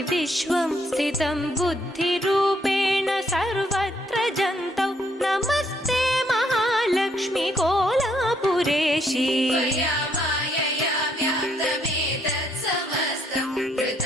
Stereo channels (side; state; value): both; normal; correlation 0.71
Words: विश्वं स्थितं बुद्धिरूपेण सर्वत्र जन्तौ नमस्ते महालक्ष्मी कोलापुरेशी त्वया मायया व्याप्तमेतत् समस्तं